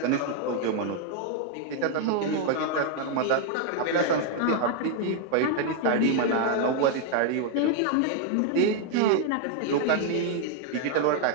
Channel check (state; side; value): different; both; correlation 0.00